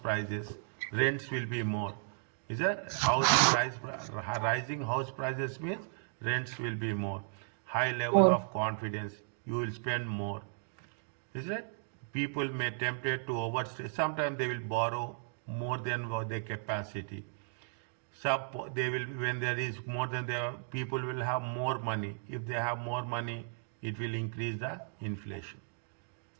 prices, rents will be more. Is that rising house prices means rents will be more. High level More. of confidence, you will spend more. Is it? People may tempted to overstay. Sometimes they will borrow more than their capacity. They will, when there is more than their, people will have more money. If they have more money, it will increase the inflation.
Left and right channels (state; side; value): silent; left; digital silence